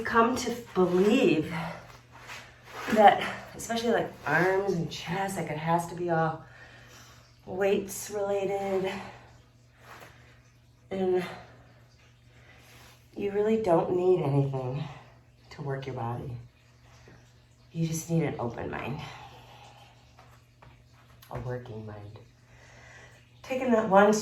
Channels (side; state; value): both; identical; correlation 1.00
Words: come to believe that, especially like arms and chest, like it has to be all weights related. And you really don't need anything to work your body. You just need an open mind. A working mind. Taking that one